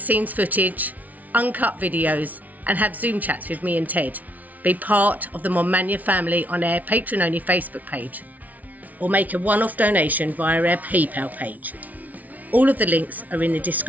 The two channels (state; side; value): late; left; 0.075 ms